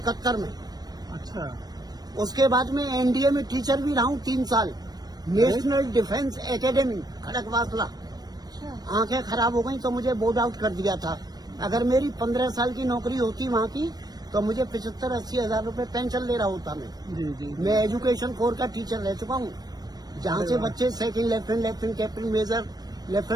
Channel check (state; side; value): late; left; 0.19 ms